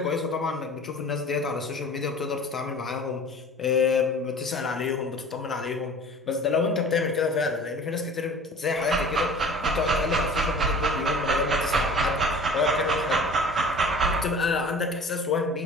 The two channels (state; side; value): normal; both; correlation 0.43